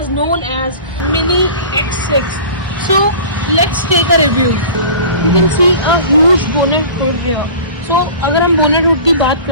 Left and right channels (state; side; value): inverted; both; correlation -0.40